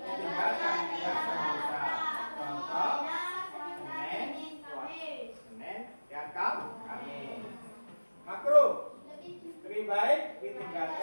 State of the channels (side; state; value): both; inverted; correlation -1.00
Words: tidak berdosa. Contoh Senin dan Kamis. Makruh lebih baik